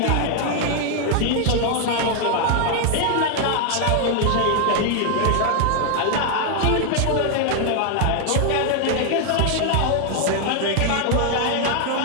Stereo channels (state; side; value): different; both; correlation 0.00